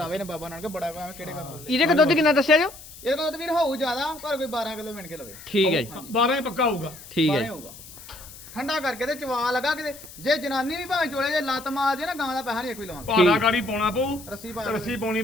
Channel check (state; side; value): noise; left; hiss, 17 dB below the sound